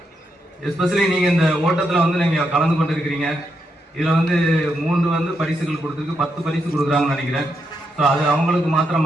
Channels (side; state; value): both; normal; correlation 0.81